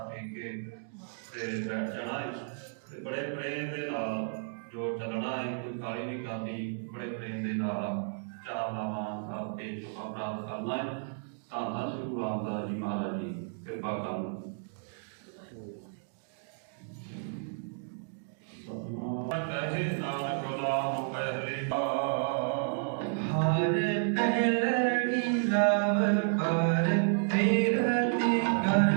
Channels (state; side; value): silent; left; digital silence